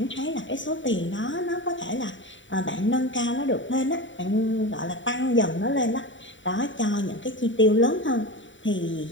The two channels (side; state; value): right; late; 0.55 ms